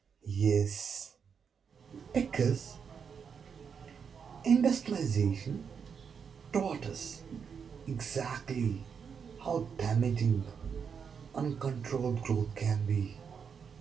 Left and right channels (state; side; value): quieter; left; 6.6 dB